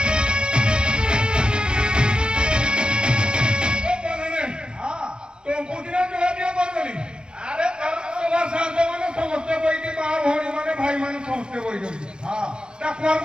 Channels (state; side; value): late; left; 0.049 ms